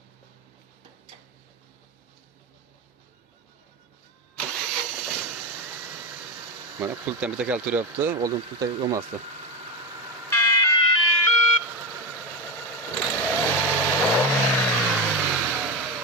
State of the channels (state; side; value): normal; both; correlation 0.17